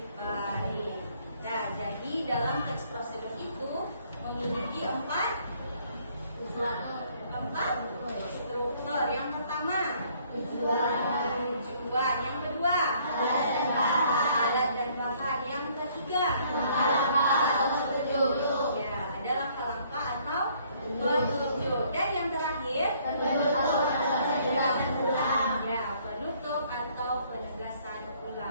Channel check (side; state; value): both; inverted; correlation -0.63